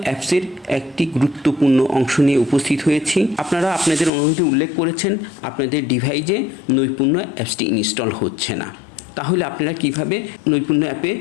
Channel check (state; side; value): drops out; right; at 4.1 s